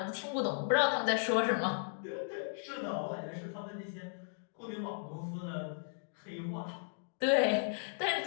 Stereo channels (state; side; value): silent; right; digital silence